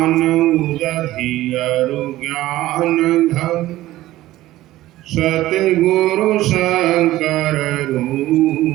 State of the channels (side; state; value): left; quieter; 15.8 dB